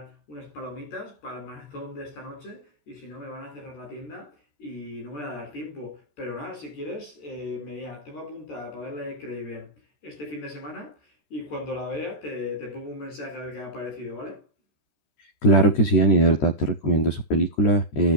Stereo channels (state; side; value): late; right; 13 ms